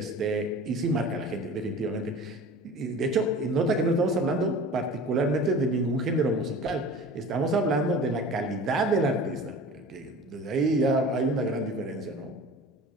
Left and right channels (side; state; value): both; normal; correlation 0.39